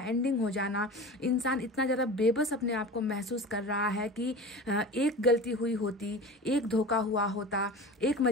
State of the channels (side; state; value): both; normal; correlation 0.34